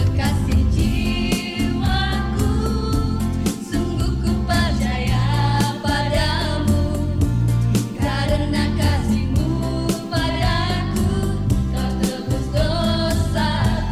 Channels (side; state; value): both; identical; correlation 1.00